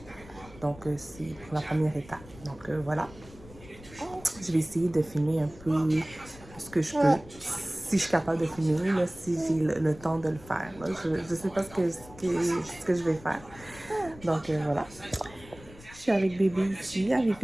Donc, c'est la première étape. Donc, voilà. Je vais essayer de filmer un peu ce que je peux. Si je suis capable de filmer, là, si j'ai le temps de le faire. Là. Je ne sais pas ce que je vais faire. Donc, voilà. Je suis avec bébé ici, avec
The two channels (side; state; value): left; noise; rumble, 20 dB below the sound